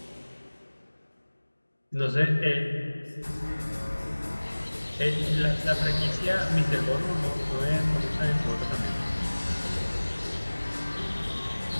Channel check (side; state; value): both; inverted; correlation -1.00